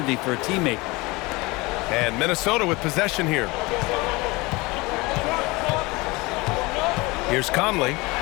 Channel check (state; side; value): quieter; right; 23.5 dB